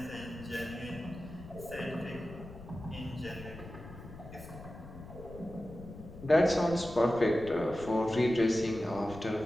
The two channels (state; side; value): noise; left; rumble, 14 dB below the sound